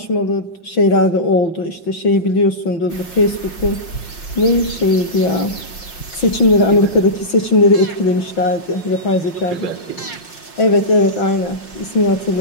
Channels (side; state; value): right; late; 6.0 ms